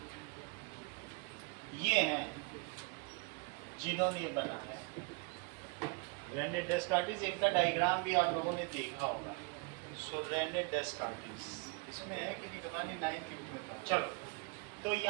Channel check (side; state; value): left; quieter; 31.4 dB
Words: ये हैं जिन्होंने ये बनाया. रेने डेस्कार्टिस, इनका डायग्राम भी आप लोगों ने देखा होगा. सो रेने डेस्कार्टिस इसमें है कि नहीं पता नहीं, 9th बुक में था. चलो तो